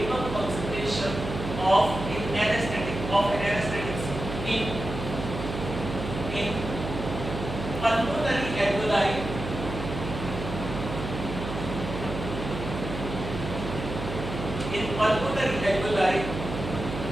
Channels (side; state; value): right; noise; hum, 7 dB below the sound